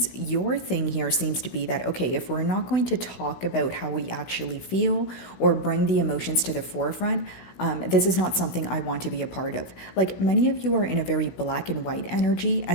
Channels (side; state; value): right; late; 16 ms